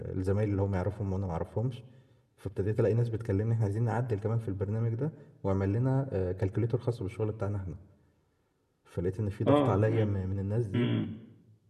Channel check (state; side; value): identical; both; correlation 1.00